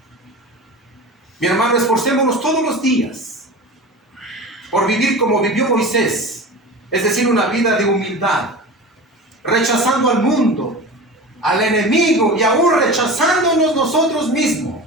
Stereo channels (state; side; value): normal; both; correlation 0.32